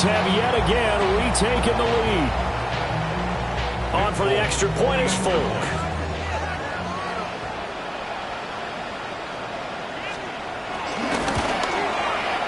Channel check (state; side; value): identical; both; correlation 1.00